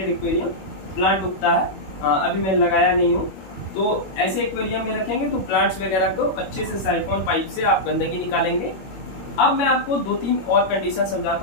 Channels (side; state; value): right; late; 21 ms